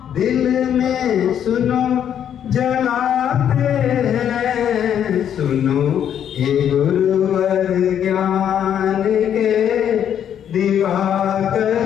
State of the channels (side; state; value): right; quieter; 9.4 dB